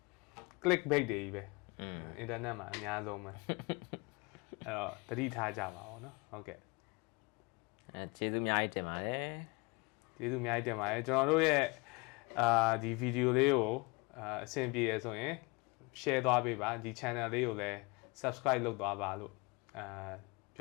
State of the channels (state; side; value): quieter; right; 27.5 dB